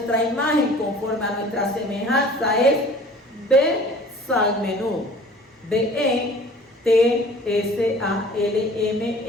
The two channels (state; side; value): normal; both; correlation 0.48